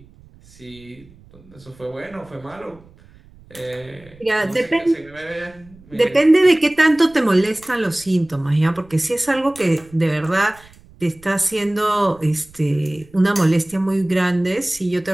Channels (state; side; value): noise; right; rumble, 25 dB below the sound